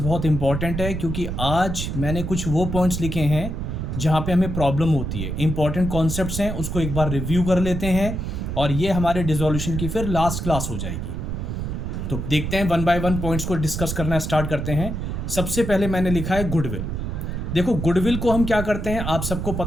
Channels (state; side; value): noise; right; rumble, 4 dB below the sound